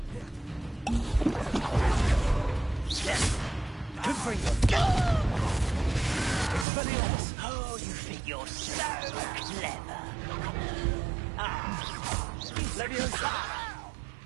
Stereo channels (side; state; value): left; drops out; at 6.7 s